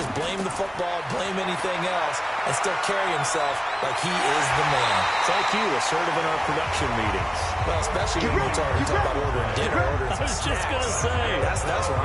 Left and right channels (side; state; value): both; identical; correlation 1.00